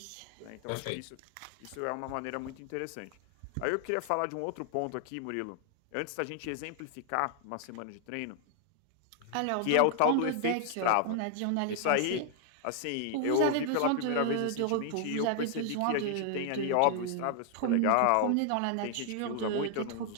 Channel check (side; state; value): both; different; correlation 0.00